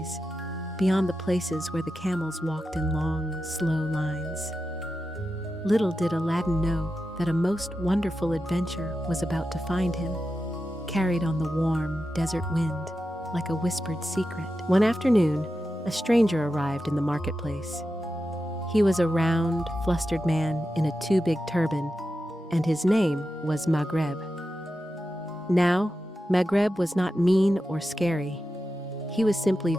beyond the places where the camels walked in long, slow lines. Little did Aladdin know that a most wonderful adventure was about to find him, carried on the warm desert wind like a whispered secret. One afternoon, a stranger arrived in the marketplace. He was a round, flustered man in a too-big turban, and his name was Maghreb. Now, Maghreb was not mean or scary. He was simply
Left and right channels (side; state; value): both; normal; correlation 0.90